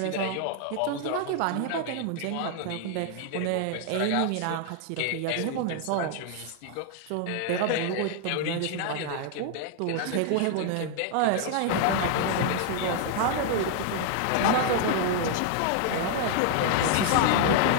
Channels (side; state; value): both; different; correlation 0.00